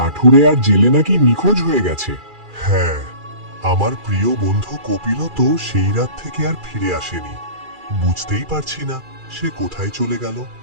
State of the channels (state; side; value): late; left; 2.4 ms